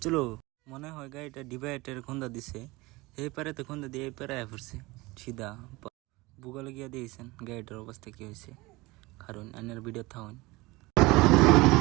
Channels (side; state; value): left; quieter; 22.1 dB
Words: চলো। মনে হয় গাড়িটা ডিভাইডারের খুন্দা দিছে, এই পারে তো খুন্দা দিয়ে এই পারে আয়া পড়ছে সিধা। ভূগোলে গিয়া দিয়েছেন গাড়িটার অবস্থা কি হয়েছে, কারণ আনের ভিডিও থাকুন।